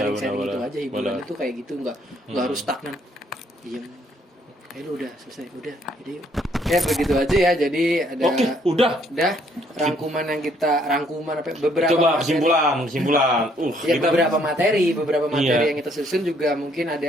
gitu aja hiburan itu kayak gitu nggak harus stagnan. Diem. Lu udah selesai, udah. Jadi ya begitu aja ya. Jadi ada Oke, udah rangkuman apa beberapa coba materi. kesimpulan Ya, kita beberapa materi Iya. yang kita susun juga mungkin ada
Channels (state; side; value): normal; both; correlation 0.66